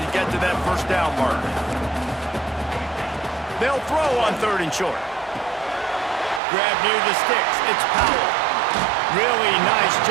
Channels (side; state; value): left; drops out; at 6.4 s